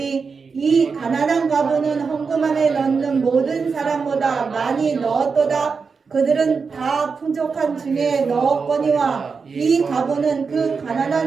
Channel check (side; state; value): left; quieter; 5.2 dB